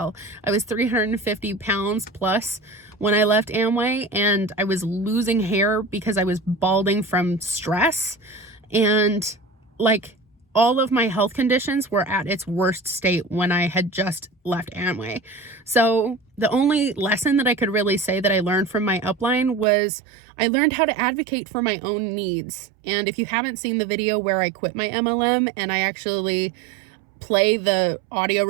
I was 350 pounds plus when I left Amway, and I was losing hair because I was balding from stress. And like, all of my health conditions were at its worst state when I had just left Amway. So the only lesson that I could really say that I learned from my upline was I learned how to advocate for my own needs. And if you haven't seen the video where I quit my MLM and I actually play the audio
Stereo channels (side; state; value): left; drops out; at 19.7 s